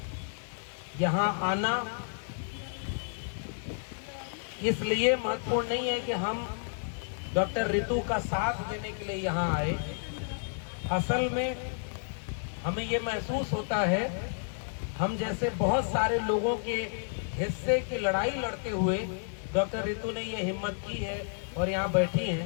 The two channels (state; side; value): silent; right; digital silence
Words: यहाँ आना इसलिए महत्वपूर्ण नहीं है कि हम डॉक्टर रितु का साथ देने के लिए यहाँ आए। असल में हमें ये महसूस होता है, हम जैसे बहुत सारे लोगों के हिस्से की लड़ाई लड़ते हुए डॉक्टर रितु ने ये हिम्मत की है और यहाँ बैठी